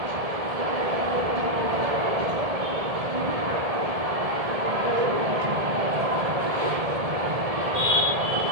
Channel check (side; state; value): left; late; 1.7 ms